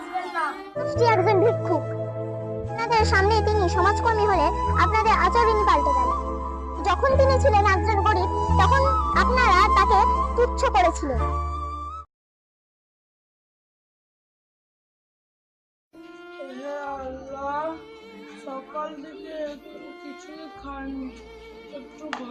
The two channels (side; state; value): both; identical; correlation 1.00